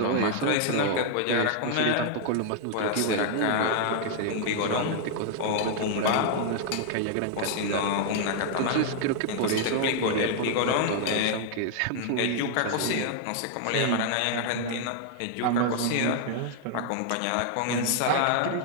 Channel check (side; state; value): both; different; correlation 0.00